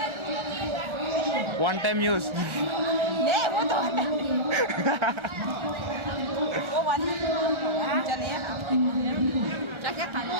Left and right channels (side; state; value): left; late; 1.4 ms